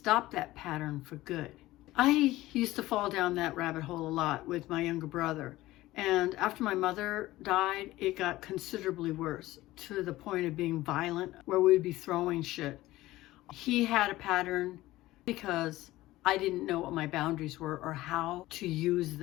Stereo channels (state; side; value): quieter; right; 17.2 dB